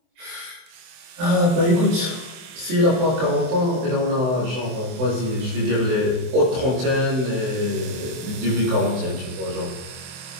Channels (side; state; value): left; late; 23 ms